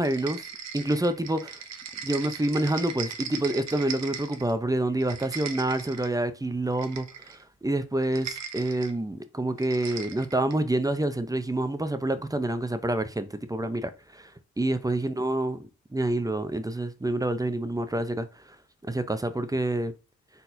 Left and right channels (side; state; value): both; normal; correlation 0.80